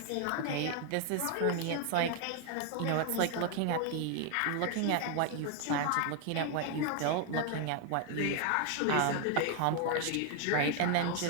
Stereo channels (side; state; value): both; different; correlation 0.01